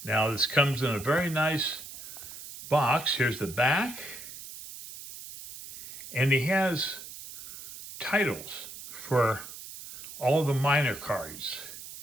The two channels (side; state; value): right; noise; hiss, 13 dB below the sound